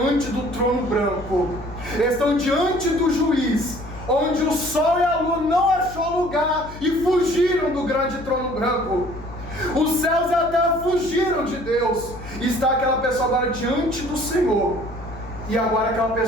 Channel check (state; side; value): noise; left; hum, 14 dB below the sound